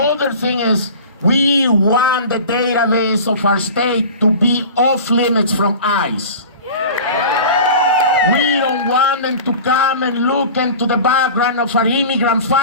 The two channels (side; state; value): both; inverted; correlation -0.37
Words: thing is, we want the database of our state to be off limits from ICE. We don't want them to come and look into the background of our immigrant